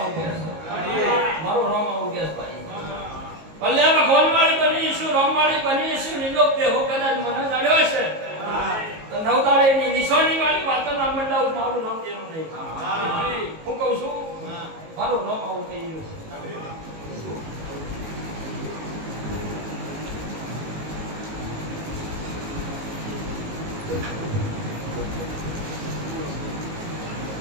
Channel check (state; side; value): late; left; 19 ms